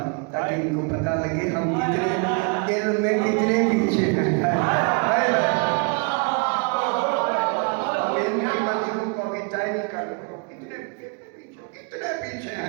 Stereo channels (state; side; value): quieter; left; 35.0 dB